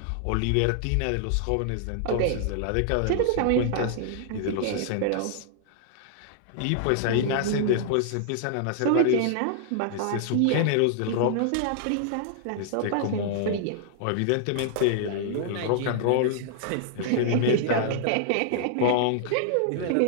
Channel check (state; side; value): different; both; correlation -0.01